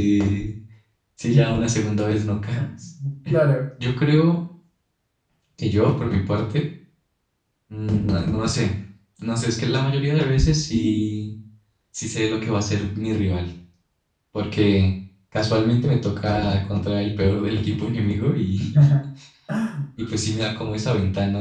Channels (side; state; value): both; identical; correlation 1.00